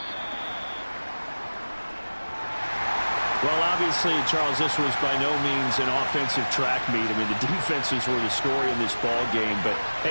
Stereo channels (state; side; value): inverted; both; correlation -1.00